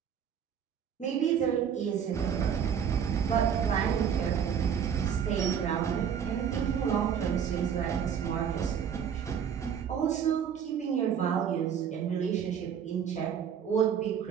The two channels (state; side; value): quieter; left; 8.0 dB